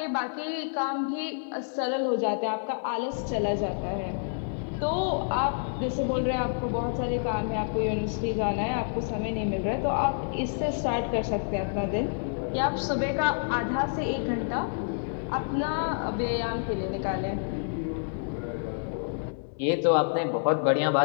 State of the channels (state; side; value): silent; right; digital silence